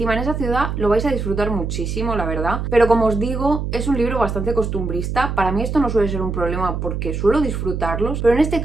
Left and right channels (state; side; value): noise; right; hum, 3 dB below the sound